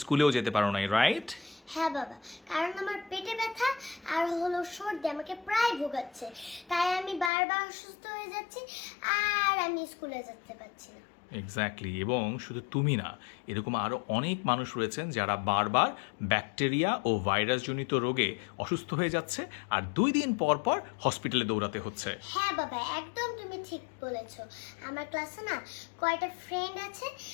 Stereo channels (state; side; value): drops out; right; at 7.3 s